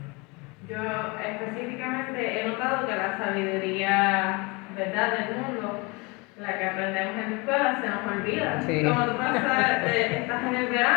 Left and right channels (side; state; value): right; quieter; 27.3 dB